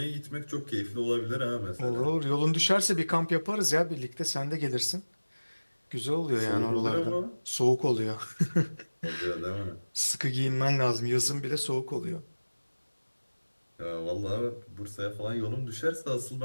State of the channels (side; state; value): both; inverted; correlation -1.00